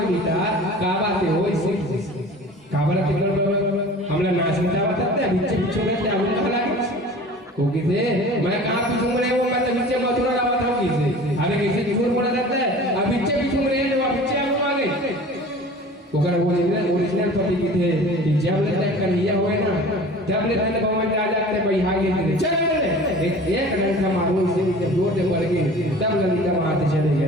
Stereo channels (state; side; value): normal; both; correlation 0.42